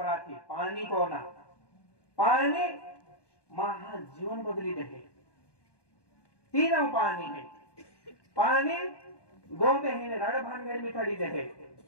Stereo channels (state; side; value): late; right; 1.2 ms